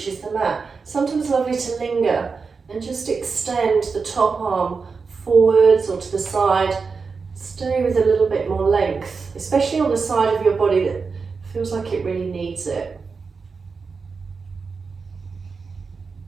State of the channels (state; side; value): quieter; left; 4.9 dB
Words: the mat. Sometimes lovely to linger and just extend the top arm forwards or to the side. Stay with a little bit more length, especially on the side of your body that feels like it really needs it.